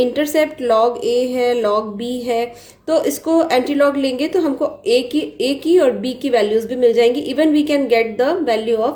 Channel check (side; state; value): both; identical; correlation 1.00